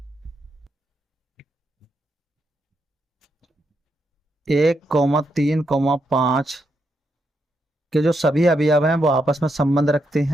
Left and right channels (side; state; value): both; normal; correlation 0.81